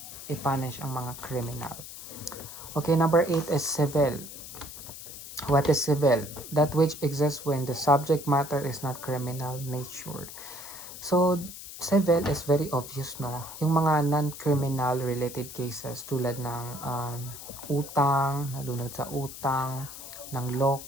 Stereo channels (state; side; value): noise; left; hiss, 12 dB below the sound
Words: ipunish ang mga criminal. Okay, number 8 is civil. What is civil? That which exists when the subject matter is not criminal nature. So, civil is very obvious, no? Yung mga non-criminal related cases tulad ng utang, nalunod sa utang, ng